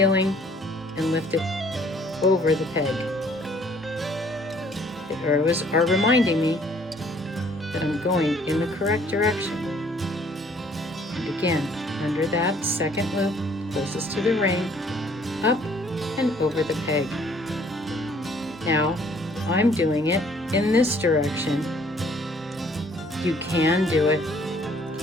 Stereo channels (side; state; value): both; normal; correlation 0.60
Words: and lift it over the peg. The arrows are reminding me that I'm going in the correct direction. And again, under that second loop, closest to the ring, up and over the peg. Now, I'm doing it in this direction. You can do it